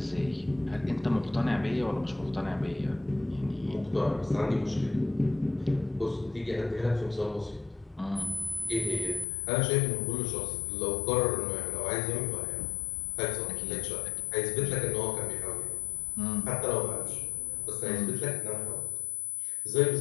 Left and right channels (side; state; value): right; drops out; at 9.2 s